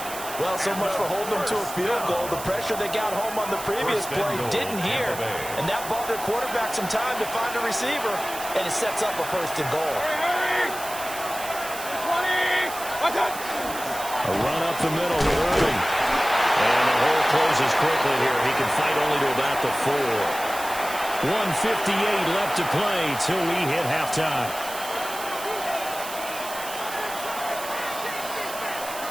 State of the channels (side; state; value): right; noise; hiss, 11 dB below the sound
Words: Well, so much for holding them to a field goal. The pressure they got home on the previous play didn't hear, and that bought their quarterback some time to find a receiver, and it sets up a 1st and goal. A run up the middle with Irving. And the hole closes quickly here. He can fight only to about the 4. 1:58 left to play till we hit halftime.